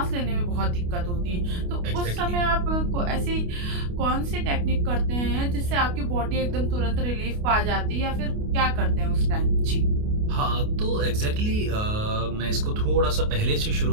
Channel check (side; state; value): left; late; 29 ms